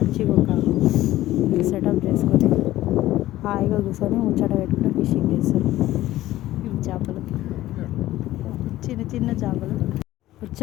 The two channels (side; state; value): right; quieter; 15.3 dB